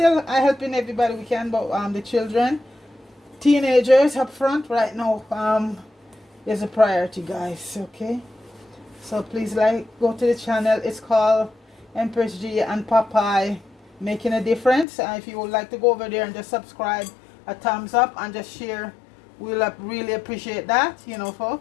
helping everybody we can, but the children, teenagers up front right now is a priority, guys. Okay, so please go to the channel. It's called Empress G and Popeye Making a Difference. And if you would like to go over there and just subscribe, a thumbs up, and just share, we'll really appreciate that.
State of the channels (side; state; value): right; drops out; at 14.9 s